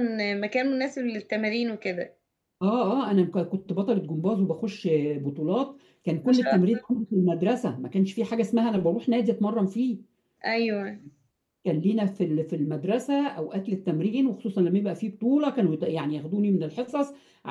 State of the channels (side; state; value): both; identical; correlation 1.00